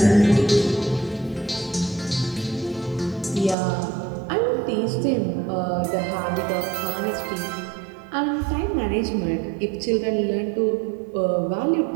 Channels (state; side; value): drops out; left; at 3.6 s